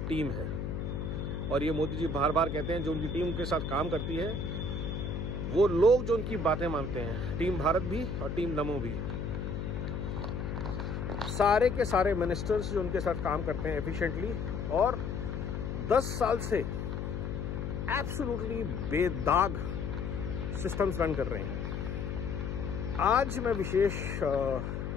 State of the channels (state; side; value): noise; left; hum, 4 dB below the sound